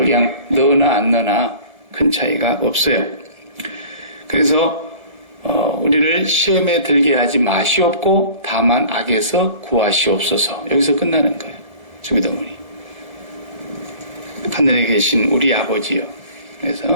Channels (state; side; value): late; left; 1.3 ms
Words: 그냥 넣으나 안 넣으나 큰 차이가 없어요. 그래서 우리를 시험에 들게 하지 마시옵고 다만 악에서 구하시옵소서. 여기서 끝나는 거예요. 주기도문이. 하늘에 계신 우리 아버지요.